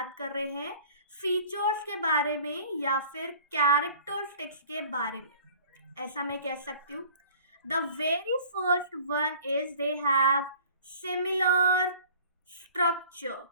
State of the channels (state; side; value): inverted; both; correlation -0.48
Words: कर रहे हैं फीचर्स के बारे में या फिर कैरेक्टरिस्टिक्स के बारे में, ऐसा मैं कह सकती हूँ. The very first one is they have similar structure.